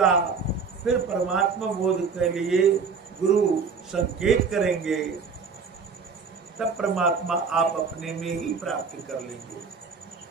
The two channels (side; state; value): left; quieter; 5.4 dB